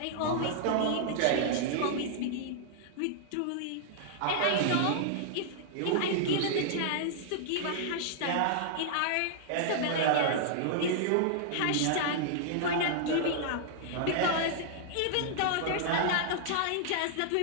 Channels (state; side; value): different; both; correlation -0.01